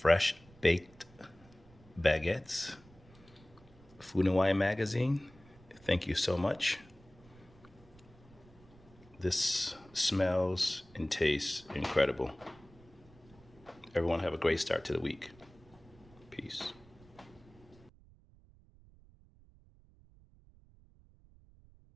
baked baguettes. Food and Wine magazine, thank you so much. This smells and tastes incredible. Everyone have a great start to the week. Peace.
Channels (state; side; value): noise; right; rumble, 25 dB below the sound